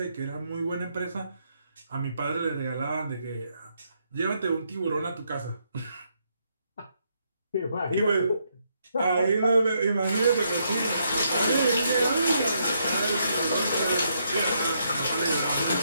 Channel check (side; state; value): both; inverted; correlation -0.76